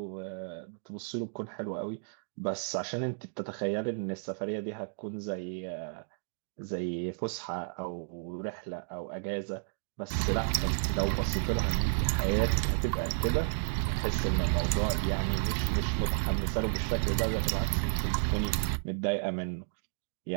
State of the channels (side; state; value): left; silent; digital silence